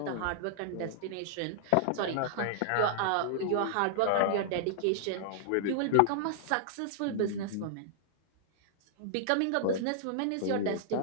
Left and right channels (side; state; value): both; different; correlation -0.01